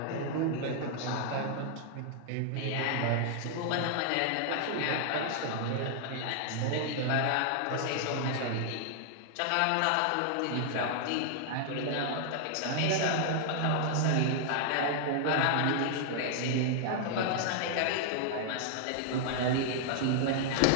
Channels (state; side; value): different; both; correlation 0.00